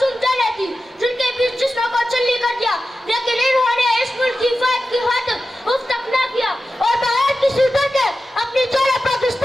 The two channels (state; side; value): normal; both; correlation 0.93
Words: جانیں تھی جن کے بیچ جسموں کو چلی کر دیا، لیکن انہوں نے اس ملک کی حفاظت کی خاطر اف تک نہ کیا اور بغیر کسی ڈر کے اپنی جانیں